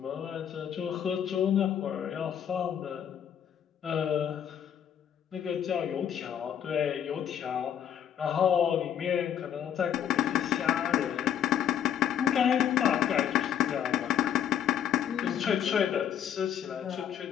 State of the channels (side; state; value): right; quieter; 9.4 dB